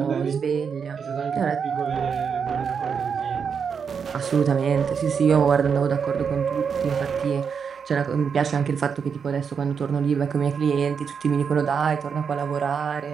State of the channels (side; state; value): left; quieter; 6.5 dB